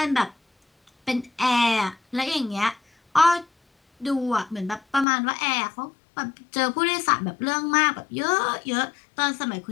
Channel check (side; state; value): right; drops out; at 5.1 s